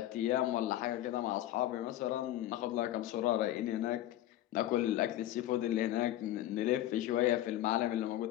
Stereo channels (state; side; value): quieter; right; 13.7 dB